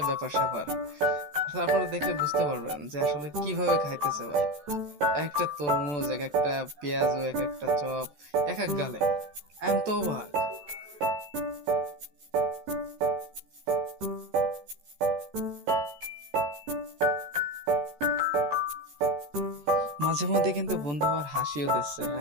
ব্যাপার স্যাপার। তারপরে দেখলে বুঝতে পারবেন যে আসলে কিভাবে খাইতেছে ভাই। এক একটা তরমুজ, এক একটা পেঁয়াজ, এক একটা চপ, এক এক গালে। আমি তো অবাক। মাঝে মধ্যে কিন্তু বন্ধু আবার হাসিও দিচ্ছে।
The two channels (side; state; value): left; late; 14 ms